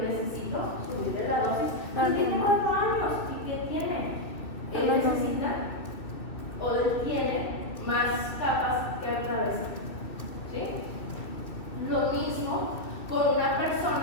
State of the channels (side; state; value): right; late; 2.5 ms